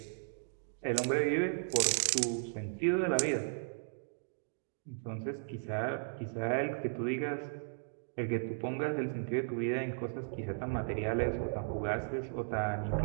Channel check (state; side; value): silent; left; digital silence